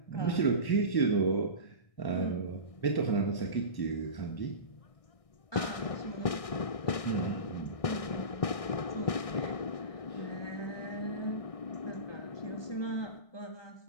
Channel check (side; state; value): right; late; 1.6 ms